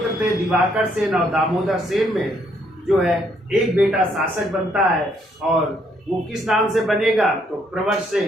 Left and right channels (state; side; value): normal; both; correlation 0.70